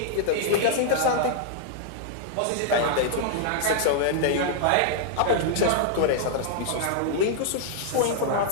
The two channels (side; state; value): both; different; correlation -0.01